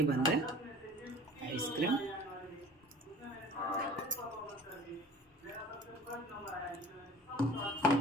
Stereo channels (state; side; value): normal; both; correlation 0.44